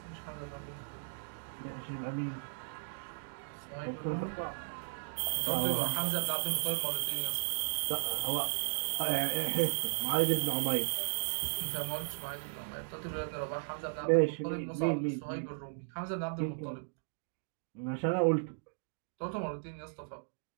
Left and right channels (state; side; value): silent; left; digital silence